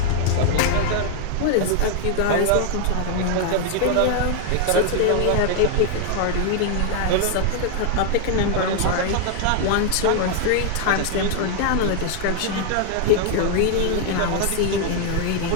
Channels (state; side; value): different; both; correlation 0.00